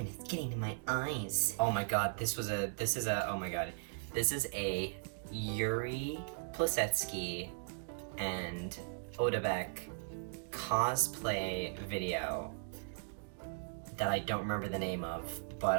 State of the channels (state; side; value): silent; left; digital silence